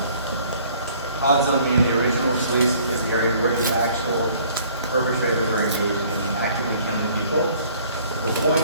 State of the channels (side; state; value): both; inverted; correlation -0.57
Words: Hot zone meaning the original police is the area where the actual perpetrators are engaged in actively killing people. The